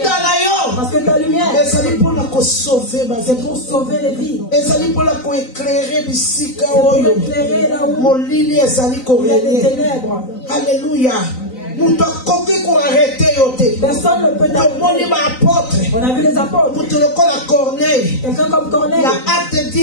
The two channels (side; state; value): right; late; 3.9 ms